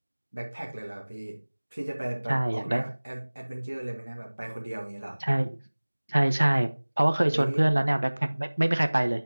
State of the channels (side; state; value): both; inverted; correlation -1.00